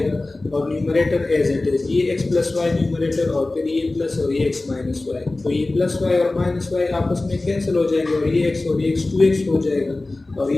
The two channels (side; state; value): right; quieter; 3.0 dB